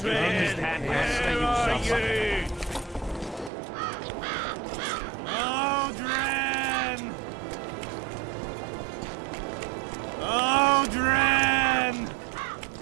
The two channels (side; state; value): left; drops out; at 3.5 s